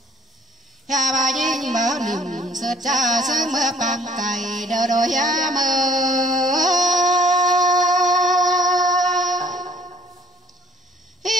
bà nhìn mở niềm sơ cha sớm mơ bằng cày đờ đôi mơ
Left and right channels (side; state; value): both; normal; correlation 0.57